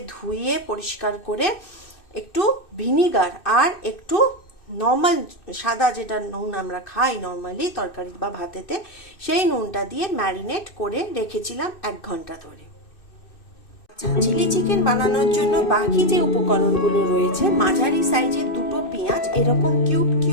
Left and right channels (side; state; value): right; late; 2.6 ms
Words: ধুয়ে পরিষ্কার করে একটু ভিনিগার আর একটু নর্মাল সাদা যেটা নুন আমরা খাই নর্মালি তরকারি বা ভাতেতে, সেই নুনটা দিয়ে ম্যারিনেট করে রেখেছিলাম 1 ঘন্টা ধরে। চিলি চিকেন বানানোর জন্য বাকি যে উপকরণগুলো রয়েছে, মাঝারি সাইজের 2টো পেঁয়াজ এরকম কিউব